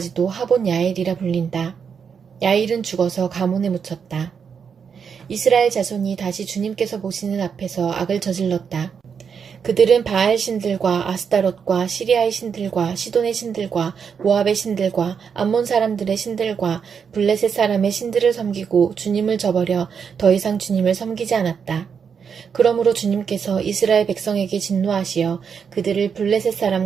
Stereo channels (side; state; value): left; quieter; 6.7 dB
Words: 하본 야일이라 불린다. 야일은 죽어서 가문에 묻혔다. 이스라엘 자손이 다시 주님께서 보시는 앞에서 악을 저질렀다. 그들은 바알 신들과 아스타롯과 시리아의 신들과 시돈의 신들과 모압의 신들과 암몬 사람들의 신들과 블레셋 사람의 신들을 섬기고 주님을 저버려 더 이상 주님을 섬기지 않았다. 그러므로 주님께서 이스라엘 백성에게 진노하시어 그들을 블레셋